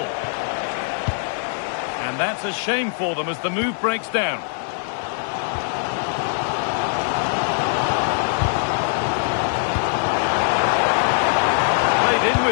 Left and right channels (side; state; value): right; silent; 55 dB below the other